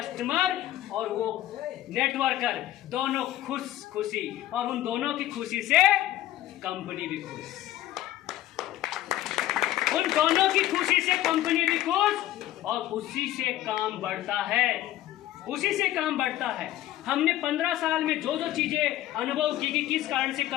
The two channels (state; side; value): quieter; right; 14.1 dB